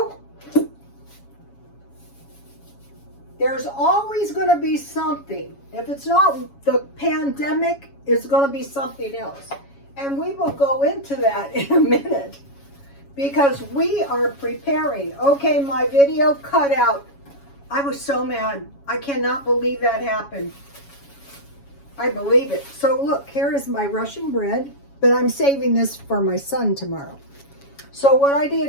There's always going to be something. If it's not the pandemic, it's going to be something else. And we will go into that in a minute because we are preparing. Okay, my video cut out. I was so mad. I cannot believe that happened. I believe it. So look, here is my Russian bread, but I'm saving this for my son tomorrow. So what I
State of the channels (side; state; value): right; late; 7.2 ms